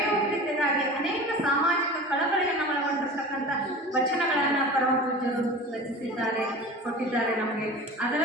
ಅನೇಕ ಸಾಮಾಜಿಕ ಕಳಕಳಿಯನ್ನು ಒಳಗೊಂಡಿರ್ತಕ್ಕಂಥ ವಚನಗಳನ್ನು ಪರಮ ಪೂಜ್ಯರು ರಚಿಸಿದ್ದಾರೆ, ಕೊಟ್ಟಿದ್ದಾರೆ ನಮಗೆ.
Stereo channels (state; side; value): normal; both; correlation 0.35